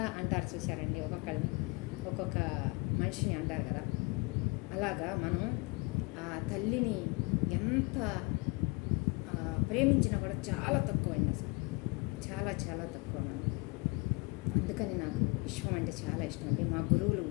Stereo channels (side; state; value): right; quieter; 28.4 dB